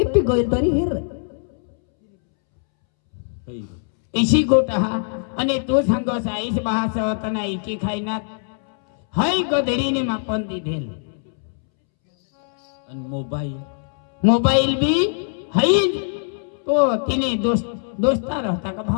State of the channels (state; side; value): silent; right; 64 dB below the other